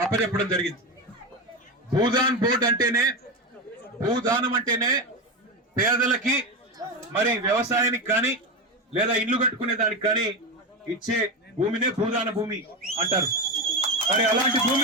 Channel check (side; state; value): both; normal; correlation 0.17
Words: అప్పచెప్పడం జరిగింది. భూదాన్ బోర్డు అంటేనే, భూదానం అంటేనే పేదలకి మరి వ్యవసాయానికి కానీ లేదా ఇల్లు కట్టుకునే దానికి కానీ ఇచ్చే భూమినే భూదాన భూమి అంటారు. మరి అలాంటి